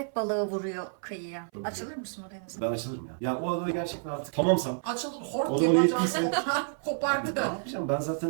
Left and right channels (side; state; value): left; silent; 58 dB below the other